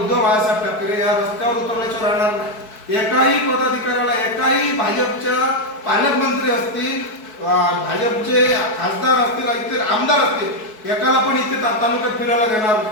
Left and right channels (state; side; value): late; right; 4.6 ms